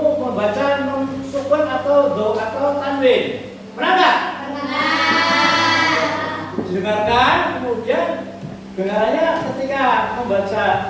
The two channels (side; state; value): both; identical; correlation 1.00